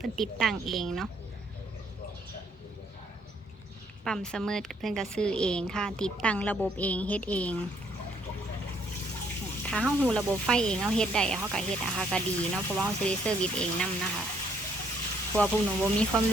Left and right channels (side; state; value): both; normal; correlation 0.68